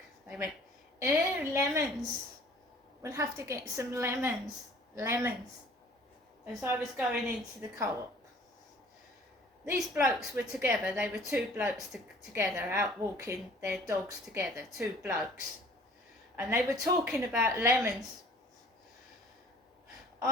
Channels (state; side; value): normal; both; correlation 0.51